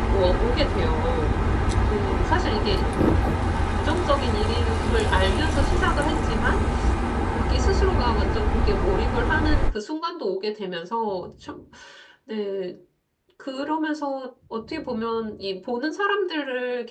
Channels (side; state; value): both; identical; correlation 1.00